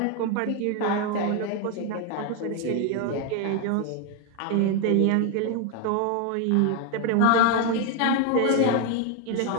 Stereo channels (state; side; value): different; both; correlation 0.01